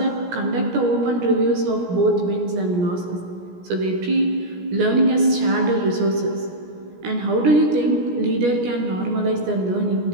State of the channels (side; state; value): left; late; 17 ms